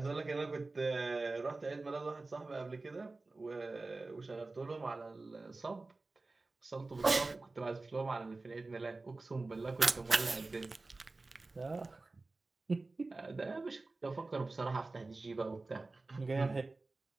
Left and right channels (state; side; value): quieter; left; 3.4 dB